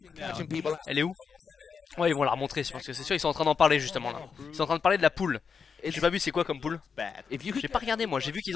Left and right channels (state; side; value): quieter; right; 6.0 dB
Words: Elle est où? Ouais, ils vont la remontrer, parce que c'est sûr ils sont en train d'en parler justement là. Ils sont en train de parler de la poule. J'ai pas vu c'est quoi comme poule. J'ai pas regardé moi, j'ai vu qu'ils